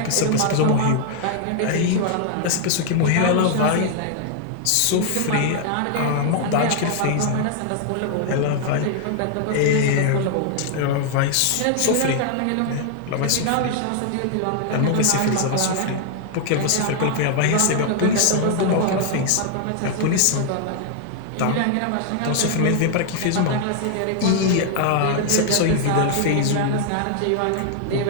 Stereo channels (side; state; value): both; different; correlation 0.00